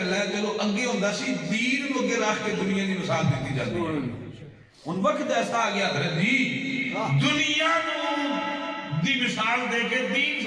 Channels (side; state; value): both; identical; correlation 1.00